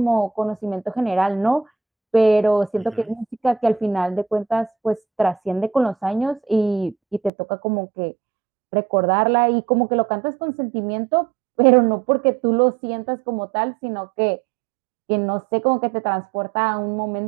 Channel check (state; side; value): drops out; left; at 7.3 s